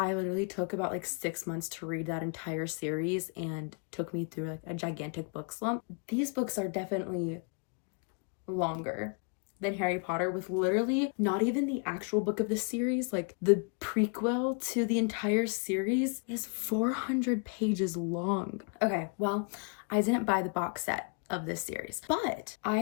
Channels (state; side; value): quieter; right; 37.3 dB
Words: literally took about like 6 months to read that entire series and took me through like a gigantic book slump. These books are definitely longer than Harry Potter, with literally not even the actual book of the series, like the prequel to the entire series is 400 pages long. Okay, well, I didn't buy the box set of this series, but I